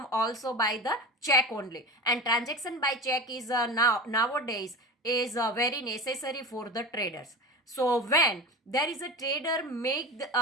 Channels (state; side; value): normal; both; correlation 0.29